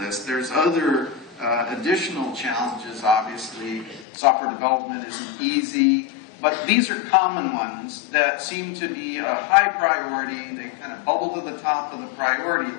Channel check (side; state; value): right; drops out; at 4.0 s